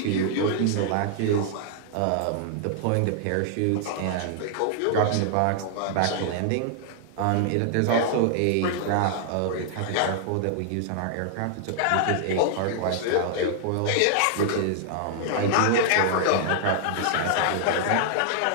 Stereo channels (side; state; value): both; different; correlation -0.01